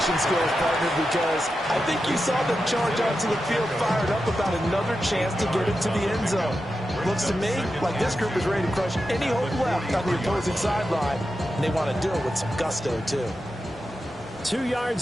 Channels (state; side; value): normal; both; correlation 0.90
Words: skills, partner, because I think you saw them charge onto the field fired up about another chance to get into the end zone. Looks to me like this group is ready to crush any hope left on the opposing sideline, and they want to do it with some gusto, too. 2